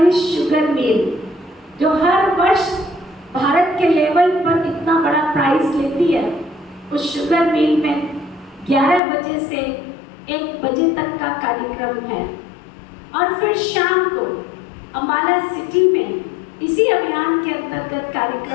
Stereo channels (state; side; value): drops out; right; at 9.0 s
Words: शुगर मिल, जो हर वर्ष भारत के लेवल पर इतना बड़ा प्राइज लेती है, उस शुगर मिल में 11 बजे से 1 बजे तक का कार्यक्रम है। और फिर शाम को अम्बाला सिटी में इसी अभियान के अंतर्गत